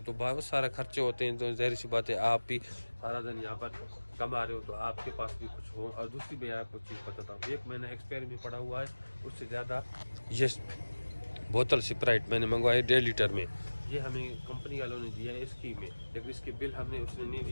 तो बहुत सारे खर्चे होते हैं। तो ज़ाहिर सी बात है, आप भी सारा दिन यहाँ पर कमा रहे हो तो आपके पास भी कुछ हो। और दूसरी मैं आपको चीज़ बताता हूँ, 1 महीना एक्सपायर में पड़ा हुआ है, उससे ज़्यादा ये बोतल स्प्राइट मैंने मंगवाई 1.5 लीटर में, ये हमें कंपनी वालों ने दिया है स्कीम में, लेकिन इसके बिल हमने उसने नहीं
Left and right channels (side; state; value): both; inverted; correlation -1.00